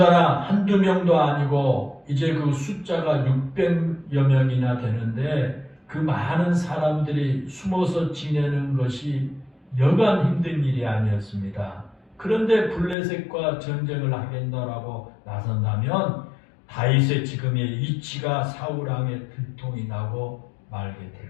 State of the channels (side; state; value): right; drops out; at 13.0 s